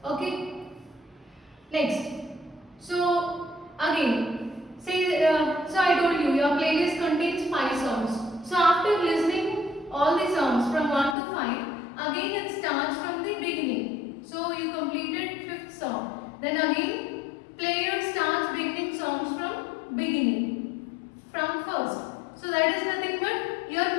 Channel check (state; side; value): drops out; right; at 11.2 s